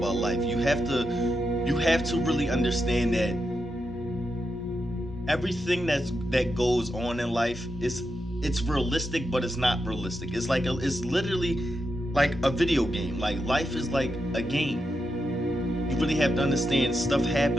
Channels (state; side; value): normal; both; correlation 0.86